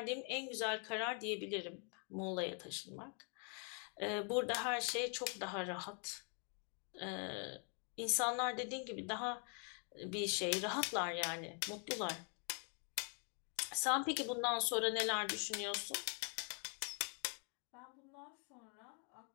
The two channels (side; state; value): right; quieter; 39.0 dB